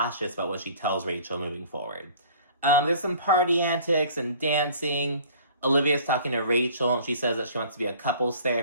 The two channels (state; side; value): inverted; both; correlation -0.49